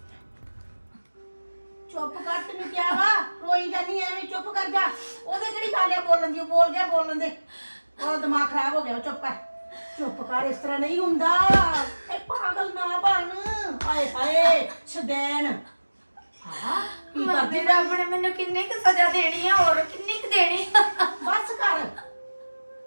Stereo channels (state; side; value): inverted; both; correlation -1.00